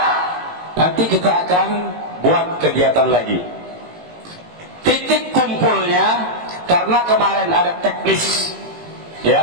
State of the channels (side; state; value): left; late; 18 ms